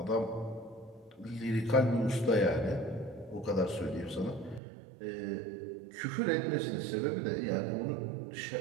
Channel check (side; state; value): left; drops out; at 4.6 s